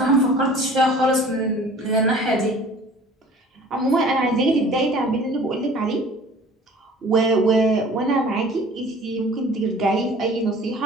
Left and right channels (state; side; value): normal; both; correlation 0.47